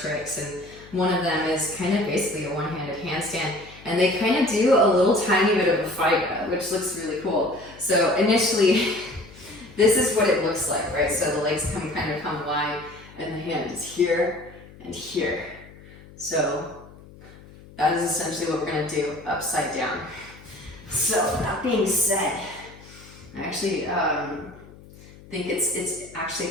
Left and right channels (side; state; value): left; noise; hum, 21 dB below the sound